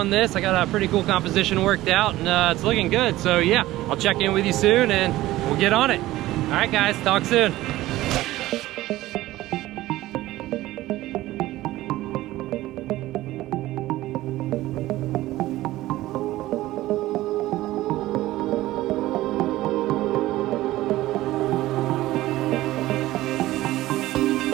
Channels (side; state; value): left; quieter; 16.4 dB